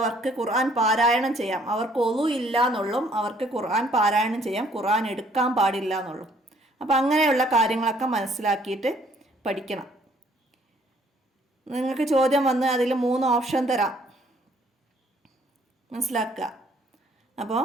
ഖുർആൻ പാരായണം ചെയ്യാം. അവർക്ക് ഒളു ഇല്ല എന്നുള്ളും അവർക്ക് ഖുർആൻ പാരായണം ചെയ്യാം, ഖുർആൻ എടുക്കാൻ പാടില്ല എന്നുള്ളൂ. അപ്പം അങ്ങനെയുള്ള കാര്യങ്ങളൊക്കെ മനസ്സിലാക്കിയിട്ട് പഠിക്കണം. നിങ്ങൾക്ക് ചോദ്യം വന്ന് അതിൽ 3 ഓപ്ഷൻ തരാം, മനസ്സിലാക്കുക. അപ്പോൾ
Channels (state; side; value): normal; both; correlation 0.62